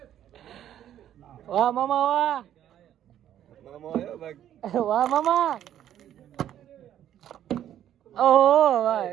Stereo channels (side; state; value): left; quieter; 11.0 dB